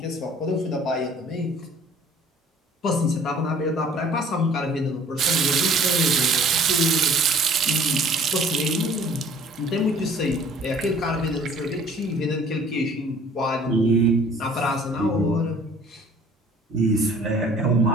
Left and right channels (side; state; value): both; normal; correlation 0.53